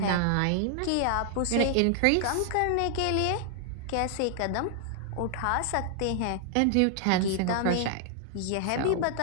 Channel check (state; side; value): different; both; correlation 0.00